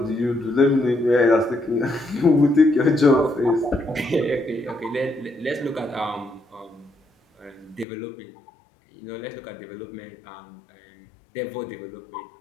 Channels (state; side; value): drops out; right; at 7.9 s